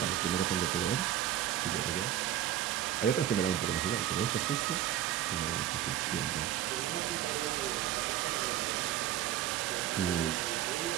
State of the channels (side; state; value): left; quieter; 11.9 dB